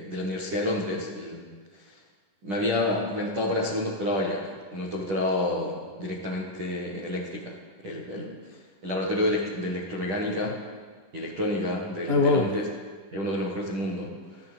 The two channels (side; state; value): left; late; 10 ms